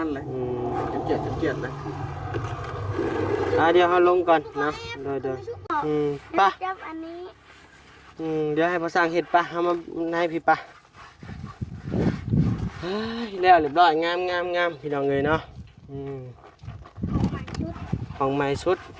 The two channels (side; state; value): both; identical; correlation 1.00